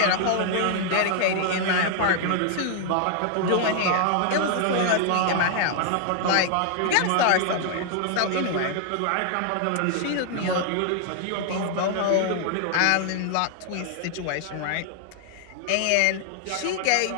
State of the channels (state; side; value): different; both; correlation 0.00